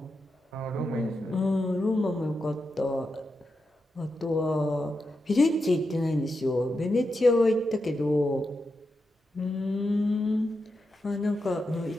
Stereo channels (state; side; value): normal; both; correlation 0.87